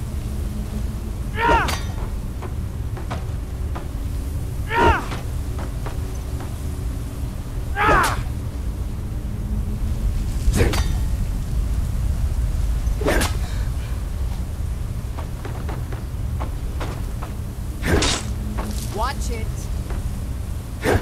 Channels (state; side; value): identical; both; correlation 1.00